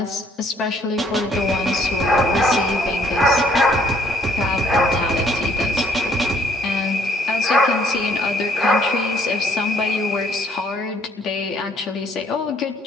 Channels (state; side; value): normal; both; correlation 0.64